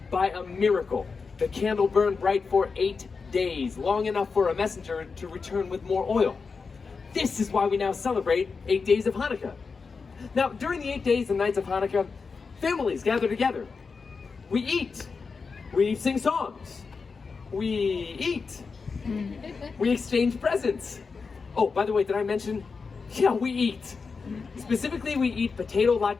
by a miracle, the candle burned bright for 8 days, long enough for a messenger to return with more oil. This is why we now celebrate 8 days of Hanukkah. Now, during the 8 days and nights of Hanukkah, families gather together. We eat. We sing songs. We eat. We exchange presents. Oh, by the way, did I mention? Yeah, we eat. Specifically, we eat potato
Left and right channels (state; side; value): quieter; right; 4.9 dB